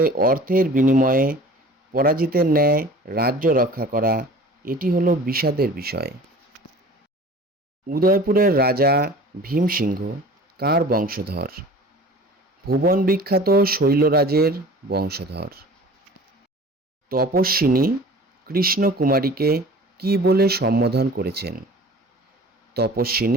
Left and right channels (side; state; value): both; normal; correlation 0.43